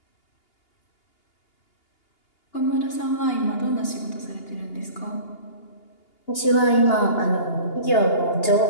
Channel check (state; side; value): late; right; 2.8 ms